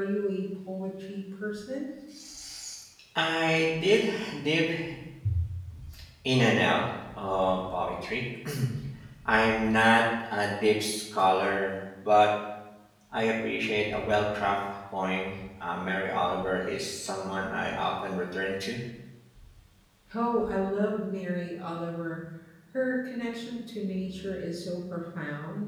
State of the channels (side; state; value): both; identical; correlation 1.00